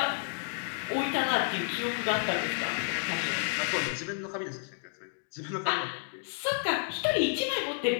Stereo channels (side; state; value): right; silent; 57 dB below the other